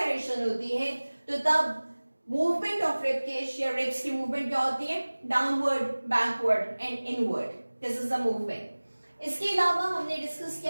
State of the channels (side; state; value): both; inverted; correlation -1.00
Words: होती है, तो तब मूवमेंट ऑफ रिब केज या रिब्स की मूवमेंट क्या होती है, downward, backward and inward. This is the movement. इसके अलावा हमने डिस्कस